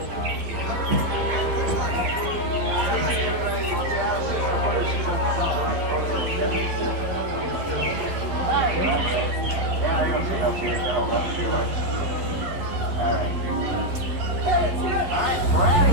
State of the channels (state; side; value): late; left; 11 ms